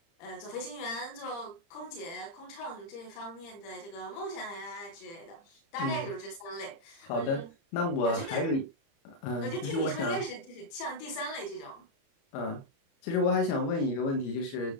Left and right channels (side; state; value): right; late; 30 ms